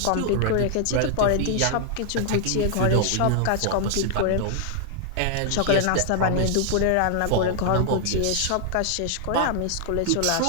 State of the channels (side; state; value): both; different; correlation 0.00